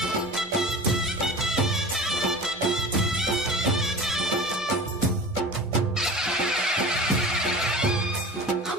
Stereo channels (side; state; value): both; normal; correlation 0.36